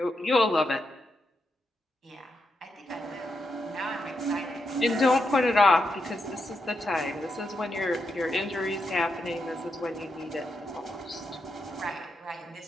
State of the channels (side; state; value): both; normal; correlation 0.84